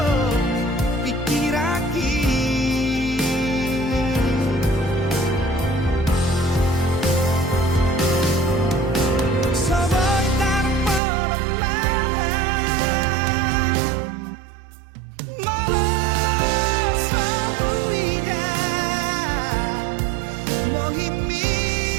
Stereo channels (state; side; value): drops out; left; at 11.0 s